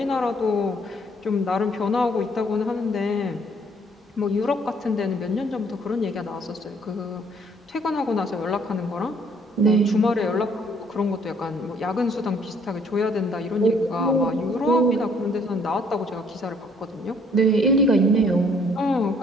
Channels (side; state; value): both; normal; correlation 0.63